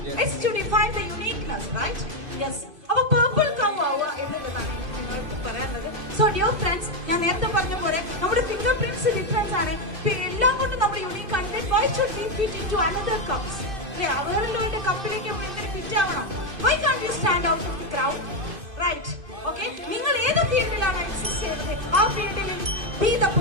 It's to define the uniqueness, right? Yes. അപ്പൊ purple cow ആവുക എന്നുള്ളതാണ് നിങ്ങൾക്ക് പറയാനുള്ളത്. So dear friends, ഞാൻ നേരത്തെ പറഞ്ഞ പോലെ നമ്മുടെ ഫിംഗർ പ്രിന്റ്സ് ഡിഫറൻസ് ആണ്. എല്ലാം കൊണ്ടും നമ്മൾ യൂണിക് ആണ്. Why should we fit into another cups? അവരുടെ കപ്പിലേക്ക് ഫിറ്റ് ആവണം. Why can't you stand out from the crowd? Right? Okay? നിങ്ങൾ ഏത് ഫീൽഡിലാണ് എക്സിസ്റ്റ് ചെയ്യുന്നത് ആ ഫീൽഡിൽ be the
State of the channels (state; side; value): late; left; 2.5 ms